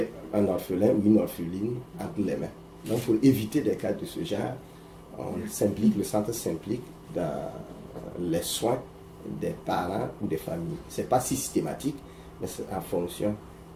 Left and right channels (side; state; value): both; identical; correlation 1.00